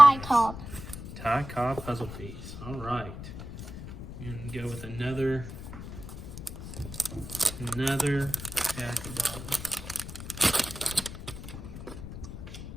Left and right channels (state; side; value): noise; left; rumble, 10 dB below the sound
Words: Donruss. Cobb. Ty Cobb puzzle piece. All right. And go with another pack of dollars.